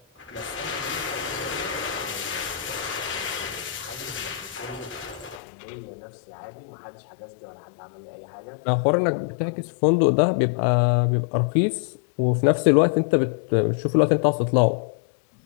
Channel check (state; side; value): drops out; right; at 5.4 s